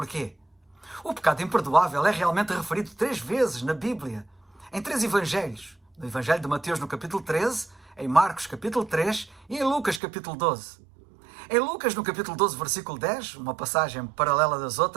O pecado imperdoável é realmente referido 3 vezes na Bíblia, em 3 evangelhos. No Evangelho de Mateus, no capítulo 13, em Marcos, capítulo 3 e em Lucas, capítulo 12. Em Lucas, no capítulo 12, versículo 10, uma passagem paralela das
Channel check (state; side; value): drops out; left; at 10.0 s